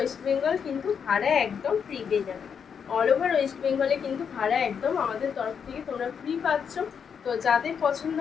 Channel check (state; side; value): quieter; right; 7.0 dB